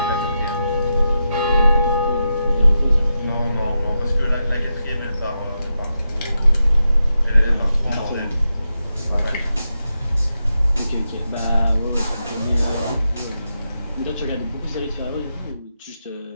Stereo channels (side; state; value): both; inverted; correlation -0.87